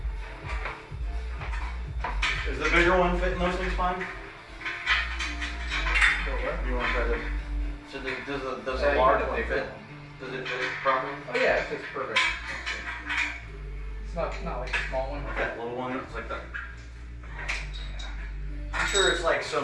Is the bigger one fitting those things fine? Go where? You want to try this? So does Yeah, the you large need a one bigger fit? one. Does it fit properly? Oh yeah, it fits perfect. It's not like a small one. Like that little one, it's like that. I'm sure it's like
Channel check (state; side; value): identical; both; correlation 1.00